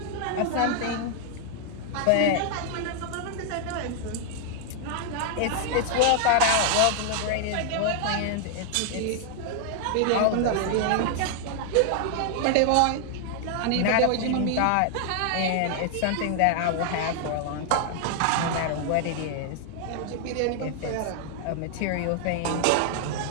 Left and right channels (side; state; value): both; different; correlation 0.00